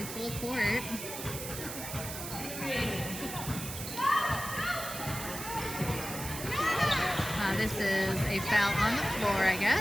full court. This is a foul on the floor, I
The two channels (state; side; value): noise; right; hiss, 8 dB below the sound